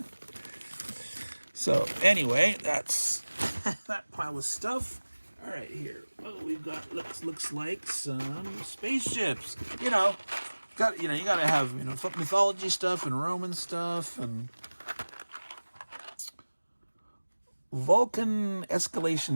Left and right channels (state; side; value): inverted; both; correlation -1.00